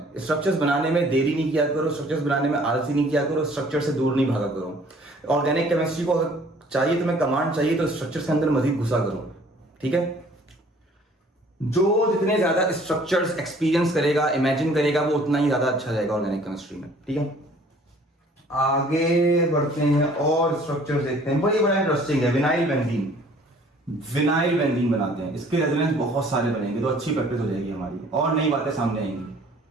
स्ट्रक्चर्स बनाने में देरी नहीं किया करो, स्ट्रक्चर्स बनाने में आलसी नहीं किया करो, स्ट्रक्चर से दूर नहीं भागा करो। ऑर्गेनिक केमिस्ट्री को अगर चाहिए तुम्हें कमांड चाहिए तो स्ट्रक्चर्स के अंदर मजीद घुसा करो, ठीक है। जो जितने ज्यादा स्ट्रक्चर्स एक्सपीरियंस करेगा, इमेजिन करेगा, वो उतना ही ज्यादा अच्छा जाएगा ऑर्गेनिक केमिस्ट्री में, ठीक है। आगे बढ़ते हैं और स्ट्रक्चर देखते हैं। बड़ा इंटरेस्टिंग है। विनाइल बेंजीन, विनाइल बेंजीन बनाते हैं, इसके रेजोनेंस बहुत सारे बनेंगे, तो अच्छी प्रैक्टिस हो जाएगी हमारी और नई बातें सामने आएंगी।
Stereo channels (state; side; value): normal; both; correlation 0.55